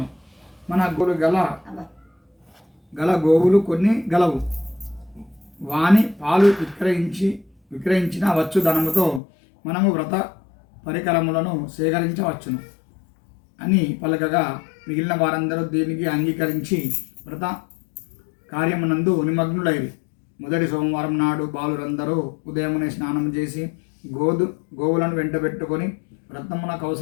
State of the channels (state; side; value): drops out; right; at 9.2 s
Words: మన గల గోవులు కొన్ని గలవు. వాని పాలు విక్రయించిన వచ్చు ధనముతో మనము వ్రత పరికరములను సేకరించవచ్చును అని పలకగా మిగిలిన వారందరూ దీనికి అంగీకరించి వ్రత కార్యమునందు నిమగ్నులైరి. మొదటి సోమవారం నాడు బాలురందరూ ఉదయమునే స్నానం చేసి గోవులను వెంటబెట్టుకొని వ్రతమునకు